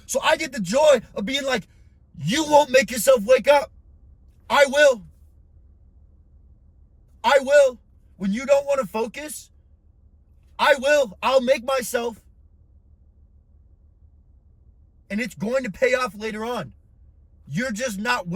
So I get the joy of being like, you won't make yourself wake up. I will. I will. When you don't want to focus, I will. I'll make myself. And it's going to pay off later on. You're just not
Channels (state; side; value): identical; both; correlation 1.00